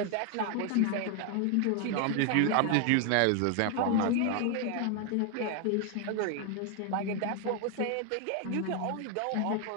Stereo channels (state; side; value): different; both; correlation 0.01